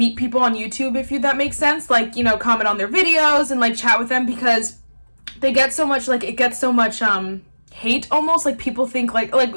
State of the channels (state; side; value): inverted; both; correlation -1.00